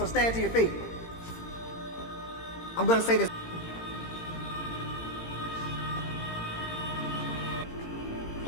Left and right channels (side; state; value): right; late; 18 ms